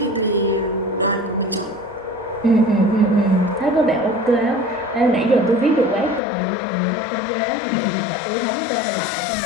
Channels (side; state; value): right; drops out; at 6.2 s